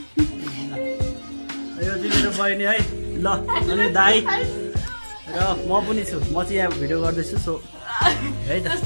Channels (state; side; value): inverted; both; correlation -1.00